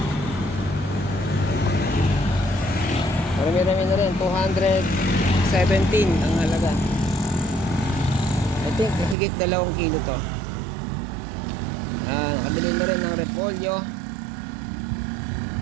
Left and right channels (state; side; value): drops out; left; at 9.2 s